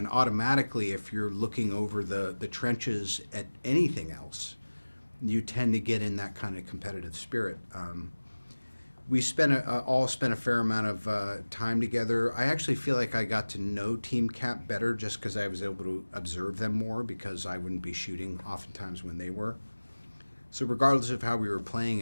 automatically, if you're looking over the trenches at anything else, you tend to get in that kind of competitive spirit. we all spent a fair amount of time together. I actually feel like I got to know Team Cap better just because I was able to observe them more because I wouldn't be shooting oftentimes when they were. So regardless of how we were playing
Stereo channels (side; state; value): both; inverted; correlation -1.00